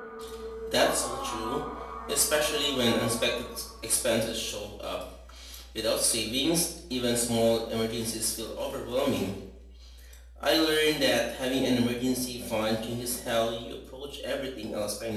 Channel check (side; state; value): both; identical; correlation 1.00